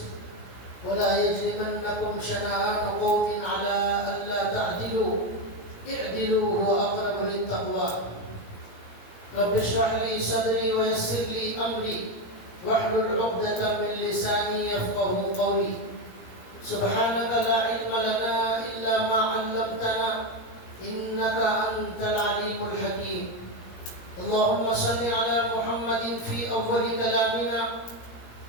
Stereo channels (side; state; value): right; late; 17 ms